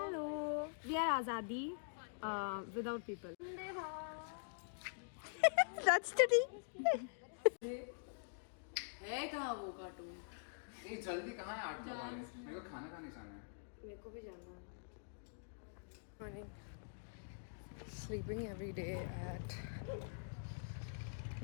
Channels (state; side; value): silent; right; digital silence